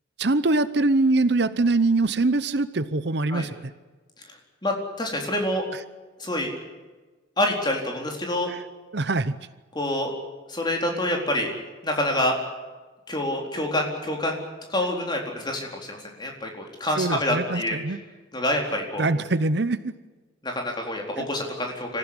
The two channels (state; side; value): normal; both; correlation 0.32